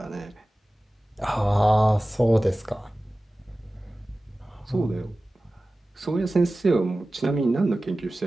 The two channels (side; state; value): both; normal; correlation 0.96